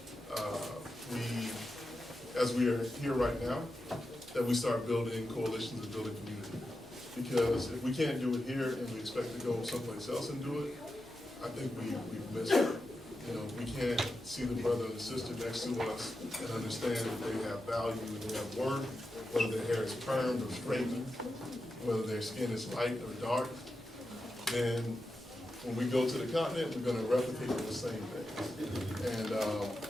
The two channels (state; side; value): normal; both; correlation 0.90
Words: as we are here right now, that we start building coalitions and building community. Because if we can't do it here and we expect to go someplace else and do it, I think we've missed it. We can't see the brother and the sister next to us and understand that they have value and they have worth, whether their hair is permed or straightened, whether their skin is light or dark. Then when we go to the continent, we're going to replicate the same things.